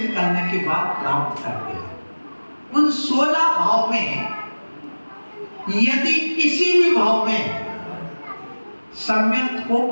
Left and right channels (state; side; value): inverted; both; correlation -1.00